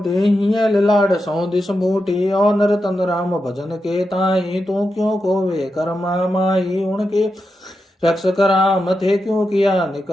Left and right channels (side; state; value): both; normal; correlation 0.88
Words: हियल लाड सौ दिस बूटी, और नर तन राम भजन के ताई, तू क्यों खोवे कर्मा माई, उनके रक्षक राम थे क्यों किया